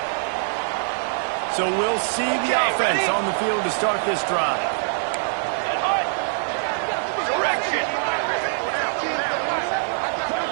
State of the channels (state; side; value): silent; left; 63 dB below the other